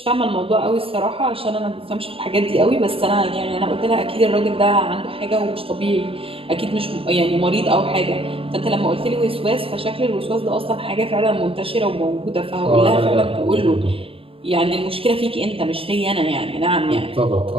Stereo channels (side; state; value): left; late; 0.27 ms